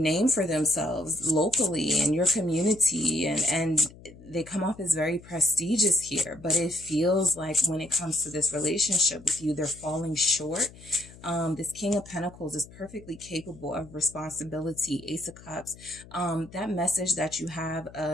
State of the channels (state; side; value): noise; left; hum, 20 dB below the sound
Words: for themselves locally in your community, and they come off as very prestigious here, but it feels like when it comes to this relationship with you, they're falling short. This King of Pentacles is perfectly capable of responsibility. Ace of Cups, that message that you have